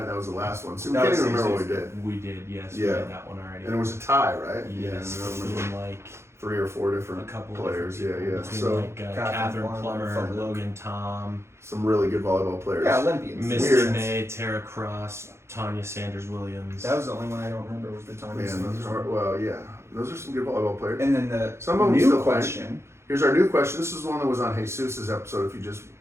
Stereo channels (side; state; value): left; late; 0.13 ms